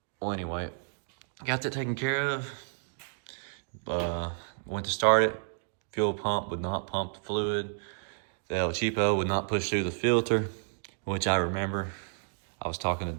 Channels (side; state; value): left; silent; digital silence